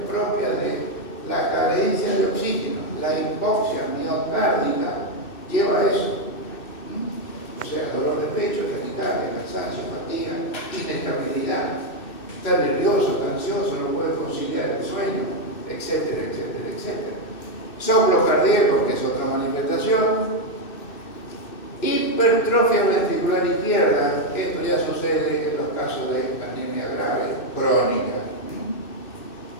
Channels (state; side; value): late; right; 2.6 ms